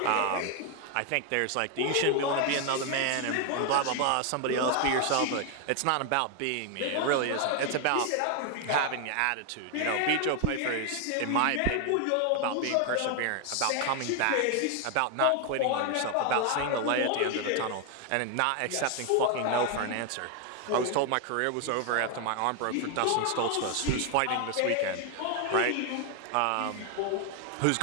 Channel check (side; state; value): both; different; correlation 0.01